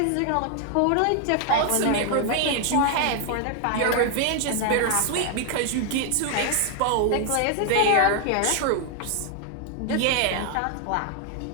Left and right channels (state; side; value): different; both; correlation 0.00